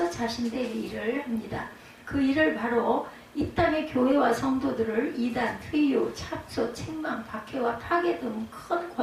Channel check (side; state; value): both; identical; correlation 1.00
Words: 자신들의 일을 합니다. 그 일을 바로 이 땅의 교회와 성도들을 이단, 회유, 참소, 책망, 박해와 파괴 등 큰